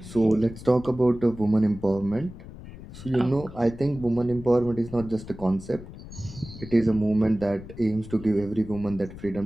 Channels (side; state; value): left; noise; rumble, 15 dB below the sound